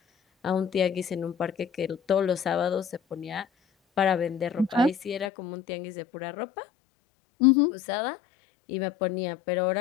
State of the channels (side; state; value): right; drops out; at 5.3 s